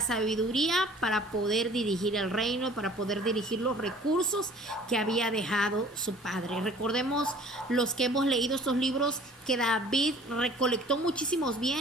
sabiduría para poder dirigir el reino, para poder dirigir los recursos que había dejado su padre. Recordemos los que hemos leído estos libros que David recolectó muchísimos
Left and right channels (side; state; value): both; normal; correlation 0.50